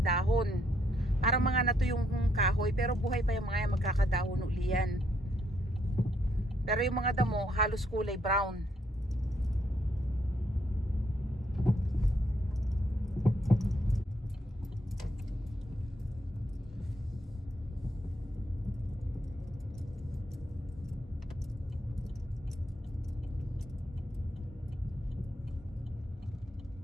dahon. Parang mga nato yung kahoy pero buhay pa yung mga yan, magkakadahon uli yan. Pero yung mga damo halos kulay brown.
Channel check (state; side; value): normal; both; correlation 0.74